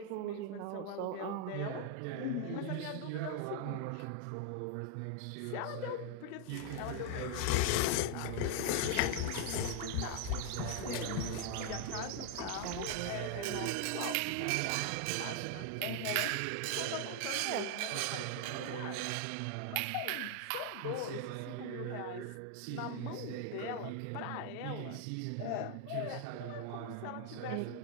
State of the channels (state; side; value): different; both; correlation 0.00